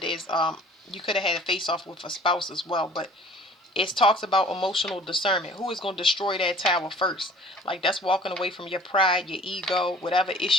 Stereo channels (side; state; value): both; normal; correlation 0.50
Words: there's you could have had a face-off with a spouse as well. But it talks about emotional discernment. Who is going to destroy that tower first? Like, that's walking away from your pride, your ego, whatever